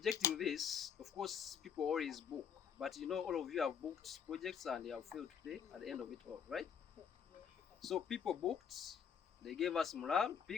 this, of course, people always book. But you know, all of you have booked projects and they have failed to pay at the end of it all, right? So people booked, they gave us morale,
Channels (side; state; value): right; quieter; 7.5 dB